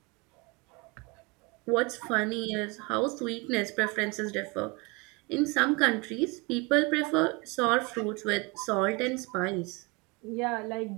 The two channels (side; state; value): left; quieter; 27.9 dB